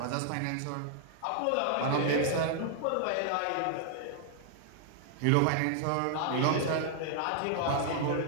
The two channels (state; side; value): different; both; correlation 0.00